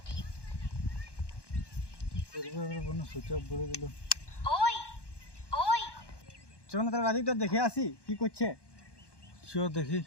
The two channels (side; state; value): right; late; 1.1 ms